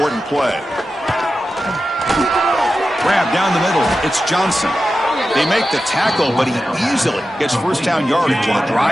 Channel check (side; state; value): both; normal; correlation 0.92